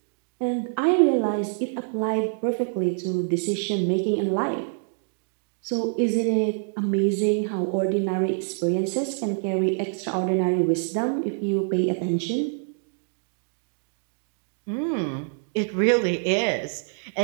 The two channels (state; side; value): silent; left; digital silence